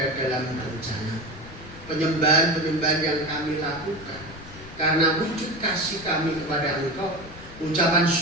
dalam rencana. Penyembahan-penyembahan yang kami lakukan karena wujud kasih kami kepada Engkau, ucapan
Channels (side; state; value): left; noise; rumble, 17 dB below the sound